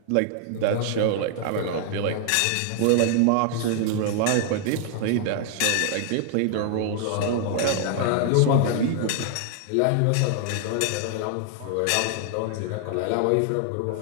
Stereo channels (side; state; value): both; different; correlation 0.00